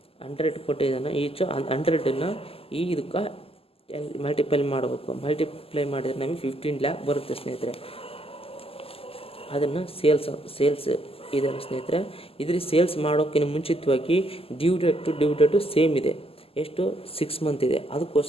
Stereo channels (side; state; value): right; late; 0.28 ms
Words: 100 ಕೊಟ್ಟಿದ್ದಾನೆ. ಈಚ್ 100ನ್ನು ಇದಕ್ಕೆ ಮಲ್ಟಿಪ್ಲೈ ಮಾಡಬೇಕು. ಮಲ್ಟಿಪ್ಲೈ ಮಾಡಿದರೆ ನಮಗೆ 15 lakh ಬರುತ್ತೆ ಸ್ನೇಹಿತರೆ. ಅದನ್ನು ಸೇಲ್ಸ್ ಇದೆಲ್ಲ ಸ್ನೇಹಿತರೆ. ಇದ್ರಿಗೆ ಸೇಲ್ಸ್ ಮಾಡೋಕ್ಕಿಂತ ಮುಂಚಿತವಾಗಿ ಡ್ಯೂ ಡೇಟು ಸೇಮ್ ಇದೆ. ಎಷ್ಟು? 6 month ಇದೆ.